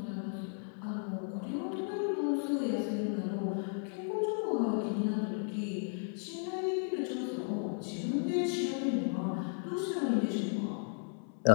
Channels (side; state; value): right; silent; 55 dB below the other